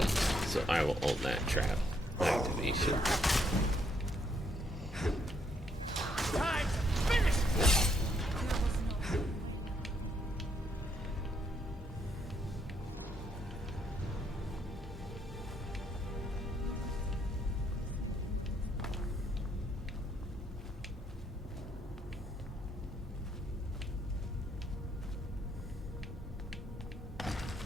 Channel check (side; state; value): both; normal; correlation 0.73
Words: so I will own that trap activation.